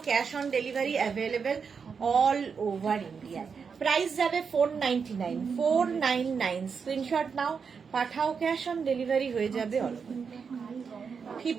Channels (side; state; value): left; quieter; 5.9 dB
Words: cash on delivery available all over India. Price যাবে 499, 499। স্ক্রিনশট নাও, পাঠাও, ক্যাশ অন ডেলিভারি হয়ে যাবে অল ওভার।